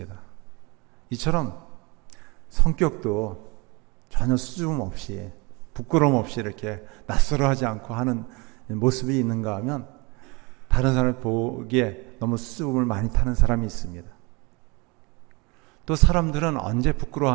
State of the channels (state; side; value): quieter; left; 27.7 dB